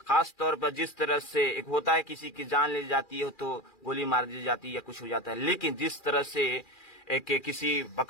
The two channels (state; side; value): late; right; 2.4 ms